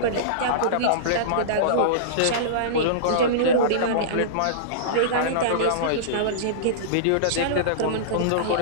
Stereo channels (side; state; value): both; different; correlation -0.04